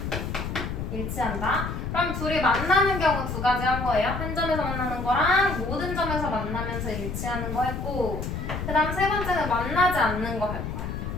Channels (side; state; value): left; noise; rumble, 5 dB below the sound